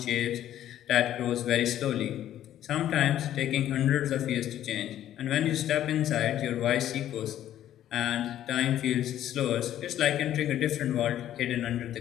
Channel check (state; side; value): quieter; right; 11.9 dB